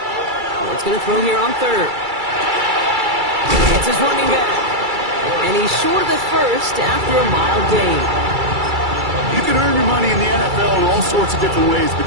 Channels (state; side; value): late; left; 2.3 ms